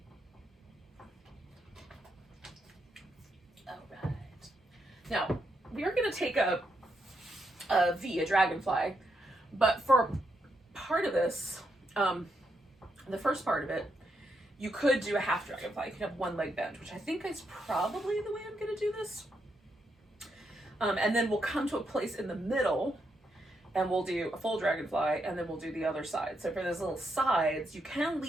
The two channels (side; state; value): both; normal; correlation 0.80